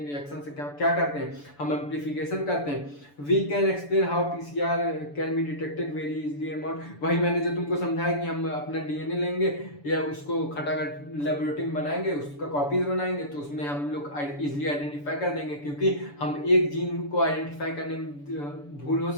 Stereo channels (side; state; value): right; late; 6.9 ms